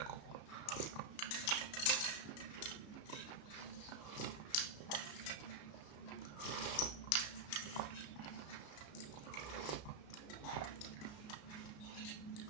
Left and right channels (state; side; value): late; right; 33 ms